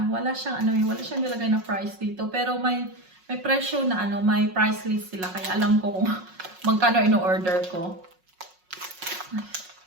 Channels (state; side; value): late; left; 5.5 ms